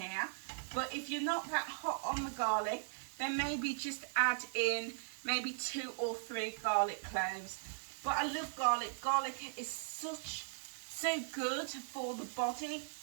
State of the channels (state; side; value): silent; left; digital silence